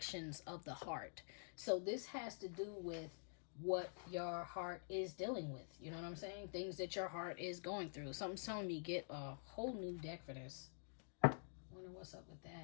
of the Heart. So, this has to do with what your heart is dealing with. You know what I'm saying? Things that your heart is going through. Something's telling me get a whole new deck for this. Wonder what's up with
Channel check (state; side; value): silent; right; digital silence